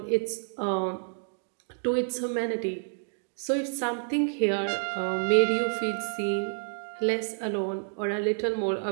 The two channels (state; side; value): silent; left; digital silence